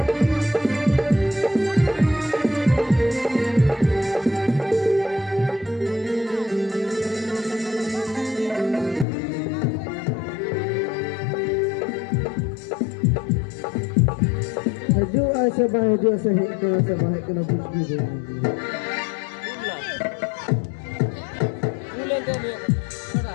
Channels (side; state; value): right; drops out; at 9.1 s